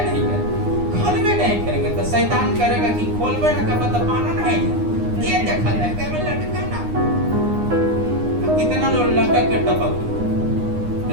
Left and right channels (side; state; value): left; late; 9.7 ms